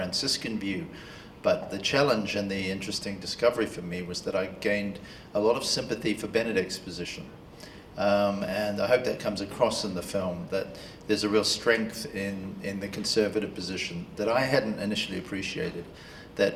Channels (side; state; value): both; identical; correlation 1.00